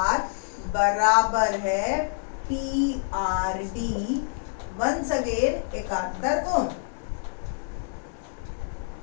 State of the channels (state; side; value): silent; right; digital silence